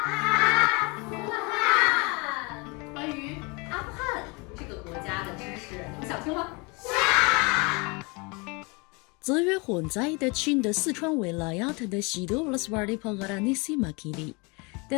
关于阿富汗这个国家的知识，你们想听吗？资源混在的亲的四川维拉亚特的西多乌拉斯瓦里帕格拉尼西马基里。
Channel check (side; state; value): right; quieter; 29.3 dB